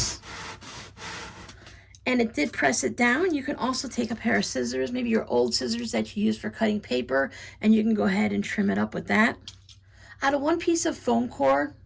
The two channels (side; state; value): both; identical; correlation 1.00